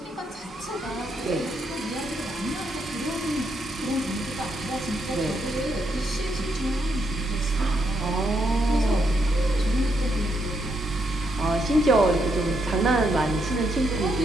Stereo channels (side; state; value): both; normal; correlation 0.78